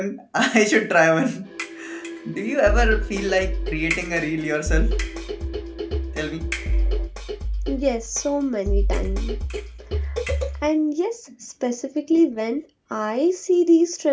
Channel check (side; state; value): both; identical; correlation 1.00